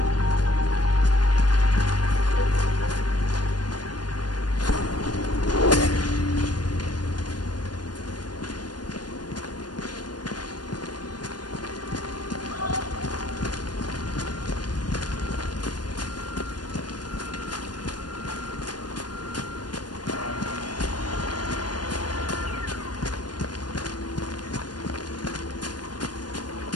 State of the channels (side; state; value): right; late; 0.70 ms